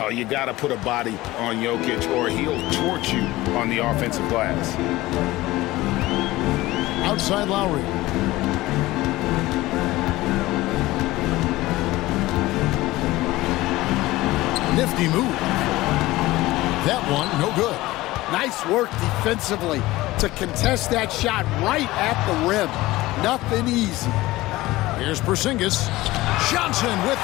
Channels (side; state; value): right; quieter; 18.4 dB